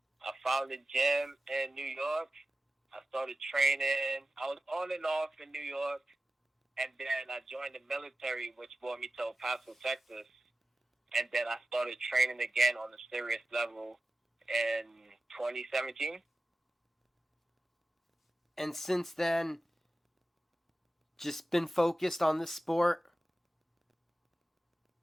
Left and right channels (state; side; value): normal; both; correlation 0.95